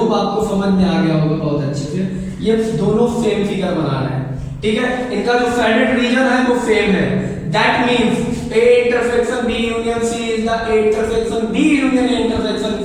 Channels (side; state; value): both; identical; correlation 1.00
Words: आपको समझ में आ गया होगा बहुत अच्छे से। ये दोनों सेम फिगर बना रहे हैं, ठीक है। इनका जो साइडेड रीजन है वो सेम है। That means A intersection B union C is the A intersection B union A intersection